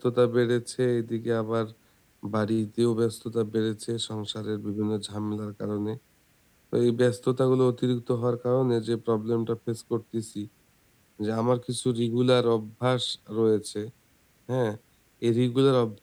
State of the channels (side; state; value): both; identical; correlation 1.00